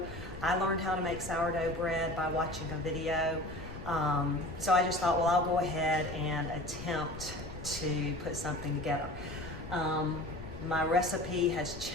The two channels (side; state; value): left; noise; rumble, 12 dB below the sound